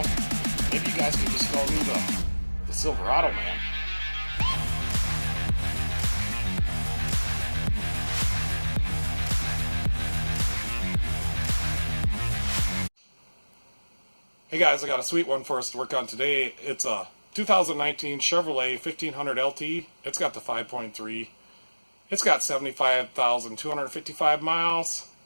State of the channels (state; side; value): inverted; both; correlation -1.00